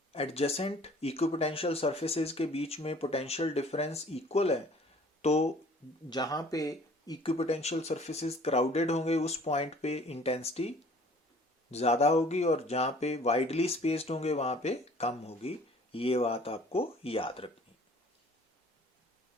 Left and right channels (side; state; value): both; normal; correlation 0.52